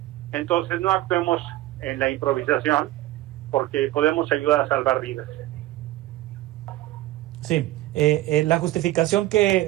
Entonces no actuemos en la improvisación, porque podemos ayudar a salvar vidas. Sí, la justificación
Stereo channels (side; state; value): left; quieter; 16.4 dB